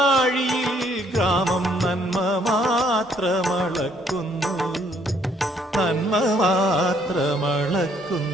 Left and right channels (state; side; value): normal; both; correlation 0.66